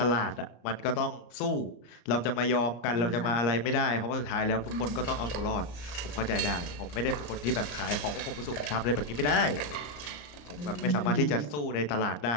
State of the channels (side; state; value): right; late; 34 ms